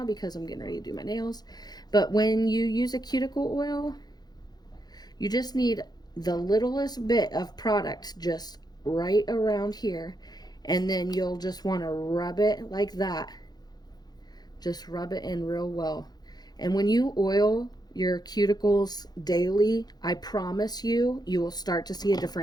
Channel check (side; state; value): right; late; 0.19 ms